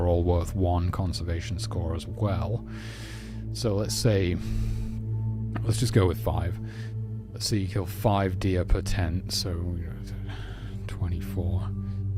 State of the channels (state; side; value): identical; both; correlation 1.00